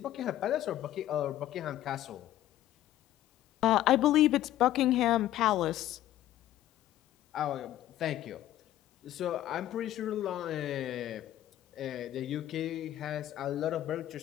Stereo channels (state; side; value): quieter; right; 13.4 dB